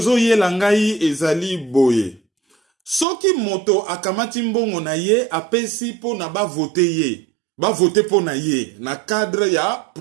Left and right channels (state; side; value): drops out; left; at 3.1 s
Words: Langai ezali boye. Soki moto akamati mbongo na ye apesi po na ba vote ye. Ba vote po na ye na cadre ya